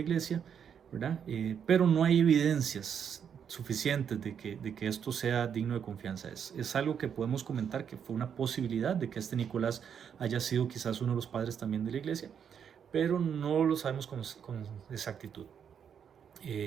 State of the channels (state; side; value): quieter; left; 7.8 dB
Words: ¿verdad? Pero no hay evidencias suficientes de que esto sea digno de confianza. Es algo que podemos comentar que fue una posibilidad de que este Nicolás haya sido quizás uno de los padres también de la iglesia, pero no lo sabemos con exactitud.